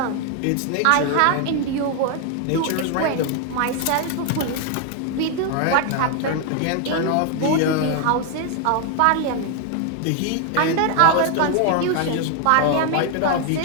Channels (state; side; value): different; both; correlation 0.00